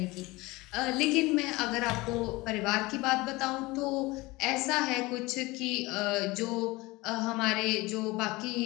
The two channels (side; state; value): right; quieter; 21.9 dB